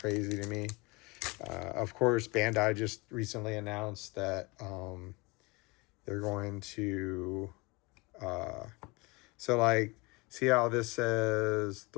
to me. Of course, Bandai just recently announced that they're going to... so, like, see how this says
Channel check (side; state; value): right; quieter; 26.1 dB